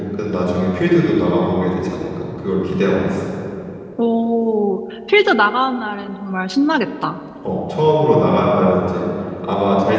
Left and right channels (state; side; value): identical; both; correlation 1.00